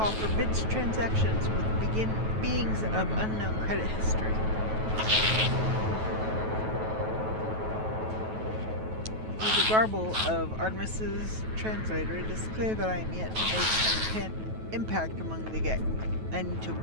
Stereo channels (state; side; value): late; left; 9.2 ms